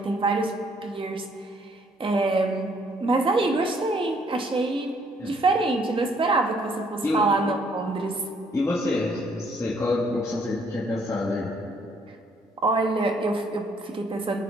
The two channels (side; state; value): both; normal; correlation 0.66